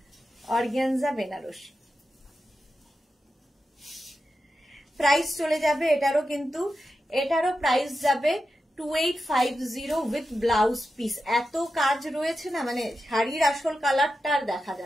অর্গানজা বেনারসি। প্রাইস চলে যাবে এটারও, কিন্তু এটারও প্রাইস যাবে 2850 উইথ ব্লাউজ পিস। এত কাজ রয়েছে না, মানে শাড়ির আসল কালারটা আর দেখা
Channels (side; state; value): both; normal; correlation 0.90